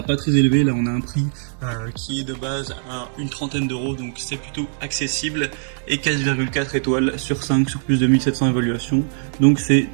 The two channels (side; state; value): left; silent; digital silence